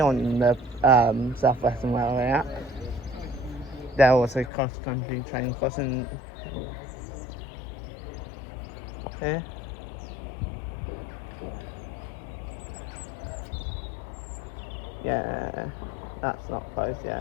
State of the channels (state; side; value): drops out; right; at 4.5 s